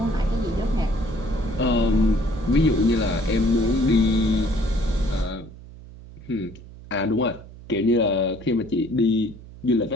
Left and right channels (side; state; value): right; noise; hum, 18 dB below the sound